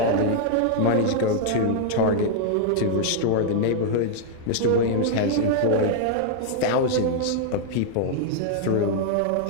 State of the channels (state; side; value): different; both; correlation -0.01